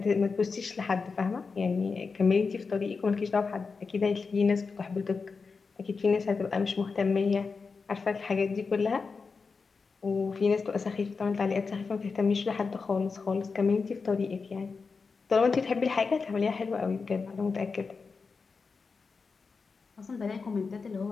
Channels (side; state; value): right; quieter; 4.8 dB